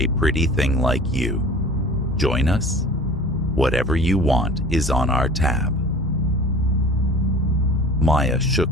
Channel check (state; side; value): normal; both; correlation 0.43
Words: pretty thing like you. Join us? Whatever you want is on our tab." Maya